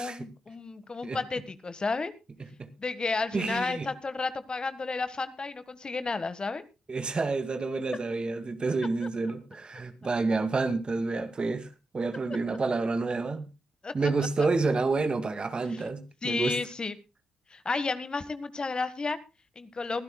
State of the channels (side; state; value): both; normal; correlation 0.87